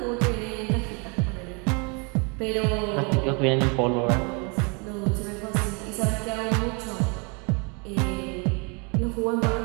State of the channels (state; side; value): quieter; left; 32.7 dB